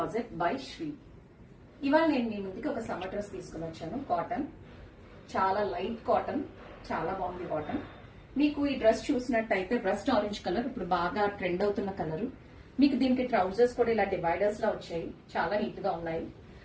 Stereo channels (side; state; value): both; identical; correlation 1.00